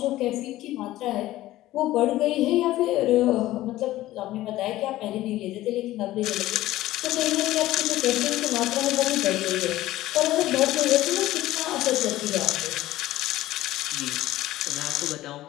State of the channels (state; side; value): quieter; right; 15.7 dB